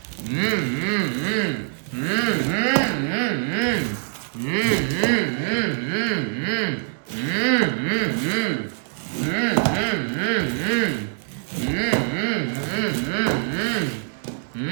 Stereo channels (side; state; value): left; silent; 63 dB below the other